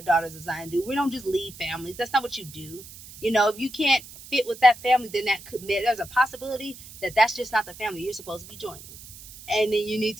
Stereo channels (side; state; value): right; noise; hiss, 17 dB below the sound